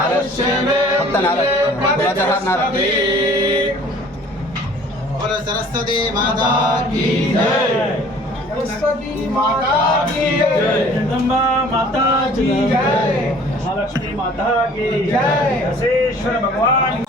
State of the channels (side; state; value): both; normal; correlation 0.51